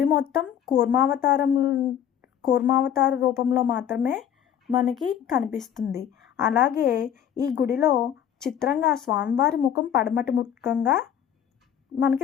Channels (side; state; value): right; quieter; 9.5 dB